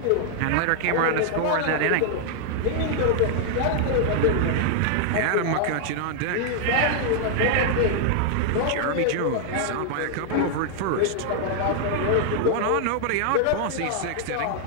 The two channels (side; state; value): both; different; correlation 0.00